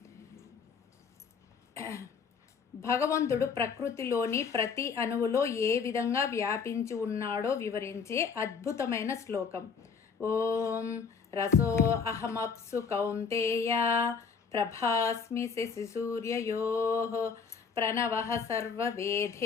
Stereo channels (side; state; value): right; quieter; 5.8 dB